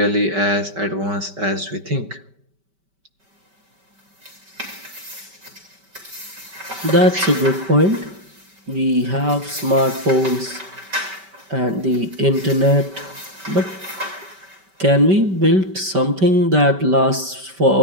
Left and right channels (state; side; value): late; left; 5.2 ms